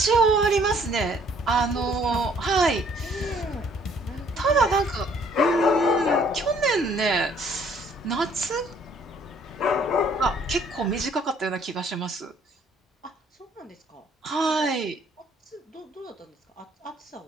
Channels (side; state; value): both; normal; correlation 0.61